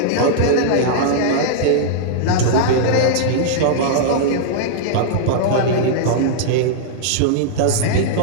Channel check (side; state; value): both; different; correlation -0.02